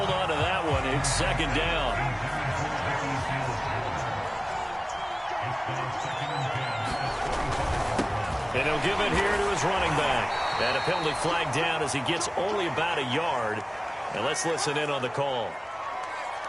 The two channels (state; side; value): identical; both; correlation 1.00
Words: on to that one. It's 2nd down. And he'll give it here to his running back. And a penalty flag down as he gets only about a yard. And let's listen in on the call.